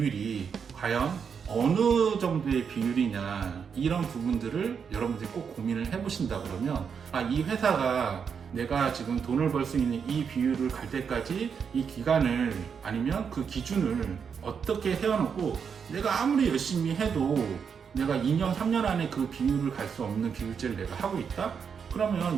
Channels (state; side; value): quieter; left; 6.6 dB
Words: 과연 어느 정도의 비율이냐, 이런 부분들을 여러분들이 꼭 고민을 해보신다 그러면 이 회사가 내가 지금 돈을 벌 수 있는 이 비율을 갈 때까지 이 기간을 아니면 그 기준을 어떻게 세워놓고 내가 아무리 열심히 해도 내가 2년 3년 안에 그 비율을 갈 수 없는 비율제를 내가 하고 있다? 그러면